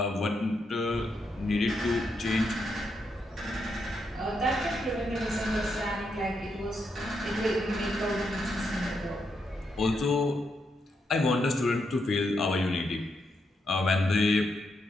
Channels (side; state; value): both; normal; correlation 0.81